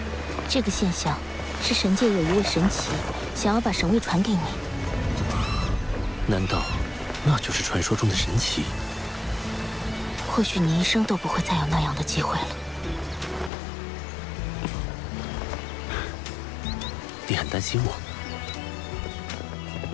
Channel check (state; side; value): drops out; right; at 13.5 s